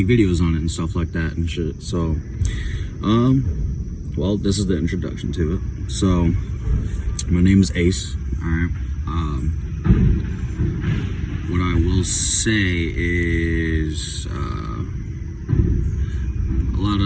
videos on it and stuff like that and shit. So, well, this is the introduction to it. So, my name is Ace. All right. What I will say is a lot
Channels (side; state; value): both; identical; correlation 1.00